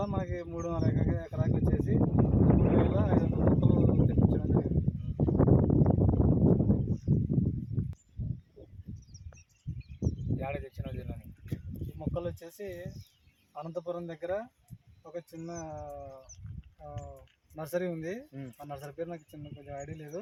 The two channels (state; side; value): identical; both; correlation 1.00